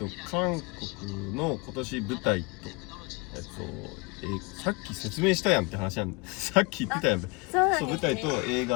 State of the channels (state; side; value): quieter; right; 28.3 dB